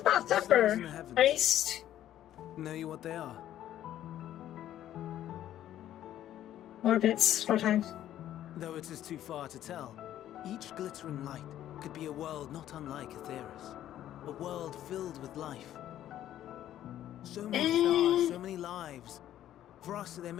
about suffer. Stars in the heavens. At least Know you what they are? orbits 4 times. Though it is too far to tell, each glittering light could be a world not unlike Aetheris. A world filled with life. So many stars, so many lives. For us, there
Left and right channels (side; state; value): right; quieter; 12.1 dB